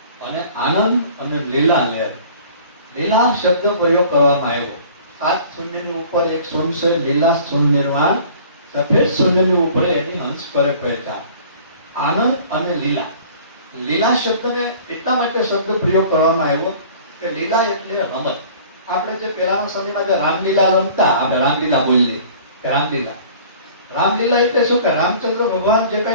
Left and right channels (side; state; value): both; inverted; correlation -0.48